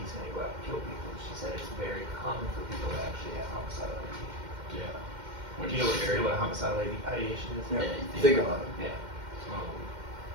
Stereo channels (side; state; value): left; late; 2.1 ms